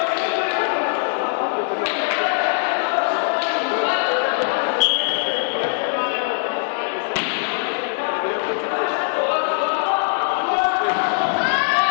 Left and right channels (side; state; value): right; silent; 56 dB below the other